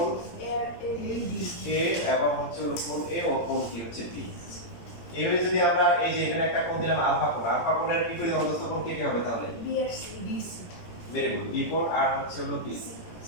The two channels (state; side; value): late; right; 17 ms